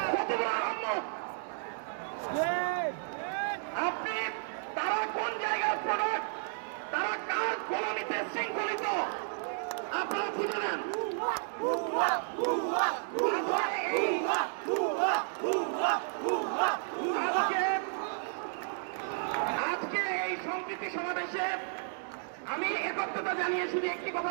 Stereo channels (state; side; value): silent; left; digital silence